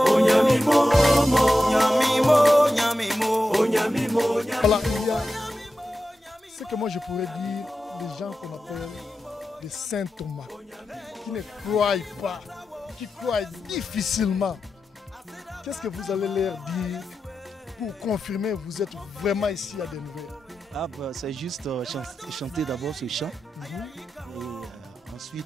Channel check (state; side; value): normal; both; correlation 0.91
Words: Onyami mo Nyami mo nyami mo Onyami mo. Voilà, il y a ce que moi je pourrais dire des gens qu'on appelle des saint Thomas, qui ne croient pas, qui croient difficilement. Qu'est-ce que vous allez leur dire pour confirmer que vous êtes vraiment ici à Denver? C'est juste chanter d'abord ce chant. Et